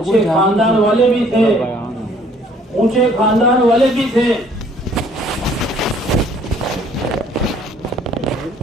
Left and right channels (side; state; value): both; normal; correlation 0.59